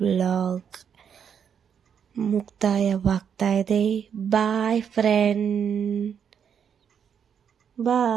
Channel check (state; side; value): quieter; left; 7.7 dB